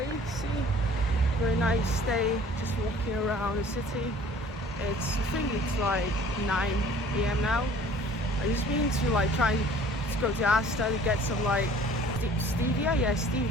see? Very nice day, just walking around the city. I think it's like 9 AM now. I just been to like try to go to Asta to get some like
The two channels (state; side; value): normal; both; correlation 0.51